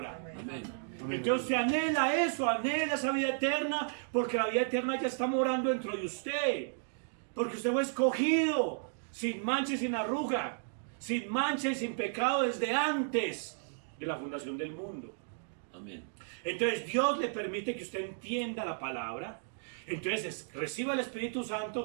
Amén. Entonces usted anhela eso, anhela esa vida eterna, porque la vida eterna ya está morando dentro de usted. Porque usted fue escogido, sin mancha y sin arruga, sin mancha y sin pecado desde antes de la fundación del mundo. Amén. Entonces Dios le permite que usted entienda la palabra. Entonces reciba el Espíritu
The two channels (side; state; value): left; silent; digital silence